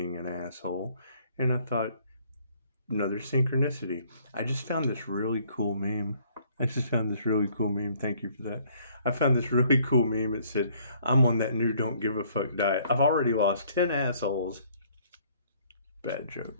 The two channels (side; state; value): both; inverted; correlation -0.62